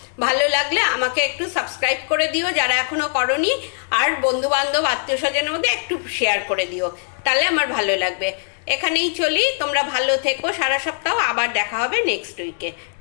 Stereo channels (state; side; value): silent; right; digital silence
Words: ভালো লাগলে আমাকে একটু সাবস্ক্রাইব করে দিও যারা এখনো করনি, আর বন্ধু বান্ধব আত্মীয় স্বজনের মধ্যে একটু শেয়ার করে দিও, তাহলে আমার ভালো লাগবে। এখানেই চলি, তোমরা ভালো থেকো সারা সপ্তাহ। আবার দেখা হবে নেক্সট উইকে।